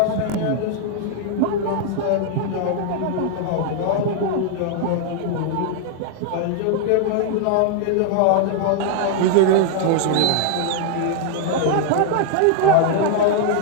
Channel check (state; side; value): different; both; correlation 0.00